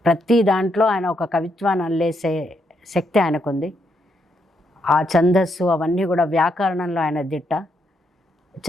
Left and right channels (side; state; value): both; normal; correlation 0.78